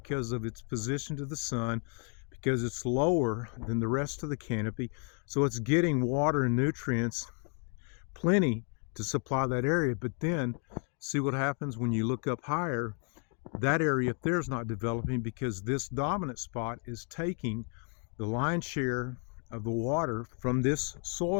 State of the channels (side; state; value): right; quieter; 38.8 dB